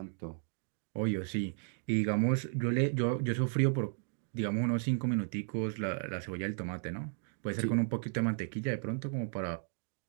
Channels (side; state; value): left; silent; digital silence